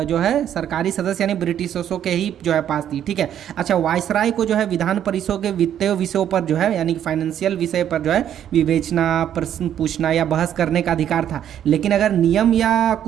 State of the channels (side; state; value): left; quieter; 10.2 dB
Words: है सरकारी सदस्य यानी ब्रिटिशर्सों के ही जो है पास थी, ठीक है। अच्छा, वायसराय को जो है विधान परिषदों के वित्तीय विषयों पर जो है यानी फाइनेंशियल विषय पर जो है विवेचना, प्रश्न पूछना या बहस करने का अधिकार था। लेकिन अगर नियम या